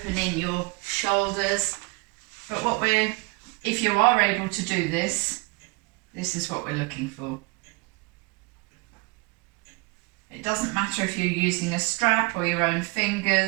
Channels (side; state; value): left; quieter; 28.2 dB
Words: in your shoulders, but if you are able to do this, this is what we're looking for. It doesn't matter if you're using a strap or your own